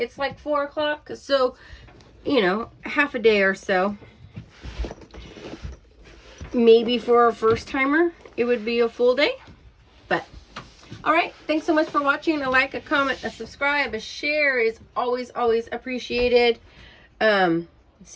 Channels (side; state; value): both; identical; correlation 1.00